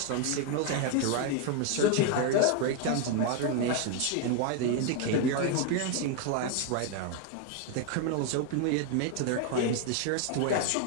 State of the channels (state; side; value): different; both; correlation 0.01